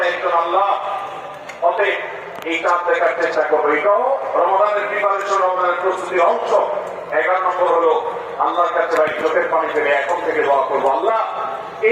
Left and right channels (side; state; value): both; identical; correlation 1.00